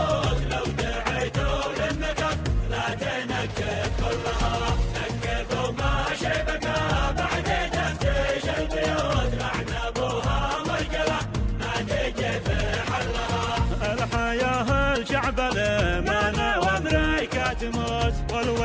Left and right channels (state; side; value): identical; both; correlation 1.00